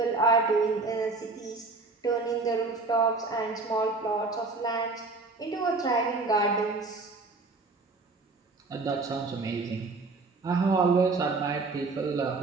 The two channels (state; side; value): quieter; left; 3.7 dB